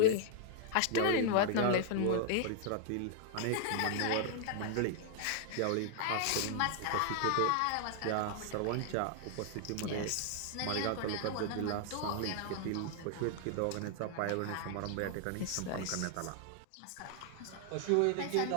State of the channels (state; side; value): different; both; correlation 0.00